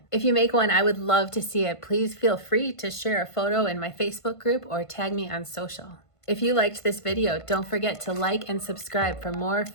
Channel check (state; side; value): late; right; 1.5 ms